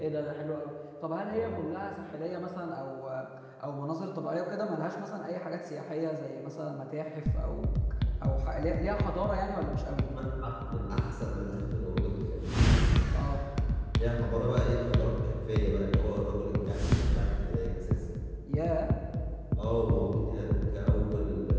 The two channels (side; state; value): both; identical; correlation 1.00